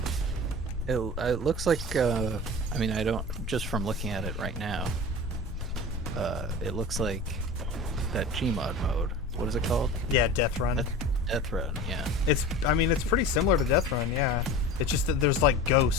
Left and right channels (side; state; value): both; normal; correlation 0.35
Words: It looks like I mean, I don't, just from looking at it right now, it looks like that Gmod mode. What is it called? Yeah, Death Run. Death Run, yeah. It's I mean it's pretty similar to Death Run, yeah. It's just that there's like